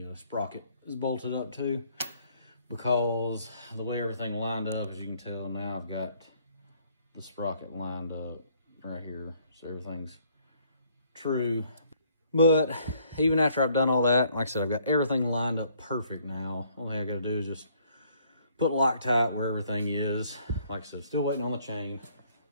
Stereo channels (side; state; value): both; inverted; correlation -0.64